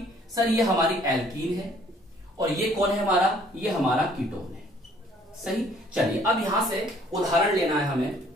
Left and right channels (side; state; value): both; normal; correlation 0.59